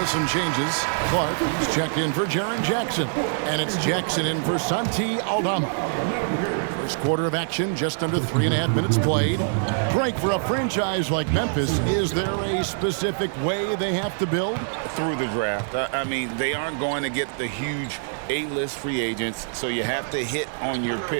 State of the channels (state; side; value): silent; left; digital silence